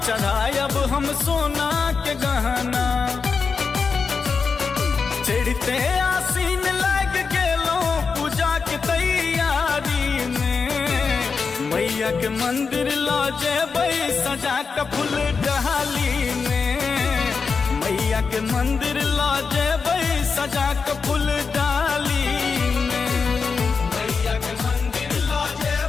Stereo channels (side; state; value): right; quieter; 5.1 dB